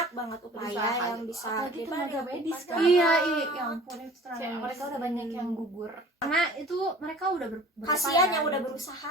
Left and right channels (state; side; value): normal; both; correlation 0.46